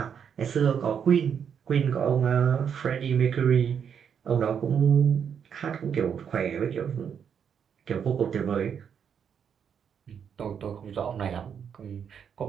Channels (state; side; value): quieter; left; 7.6 dB